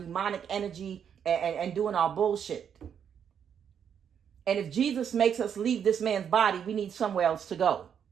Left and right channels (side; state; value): left; quieter; 8.1 dB